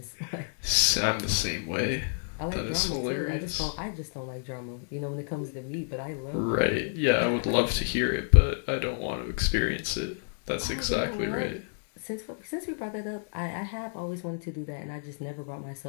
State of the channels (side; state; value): right; silent; digital silence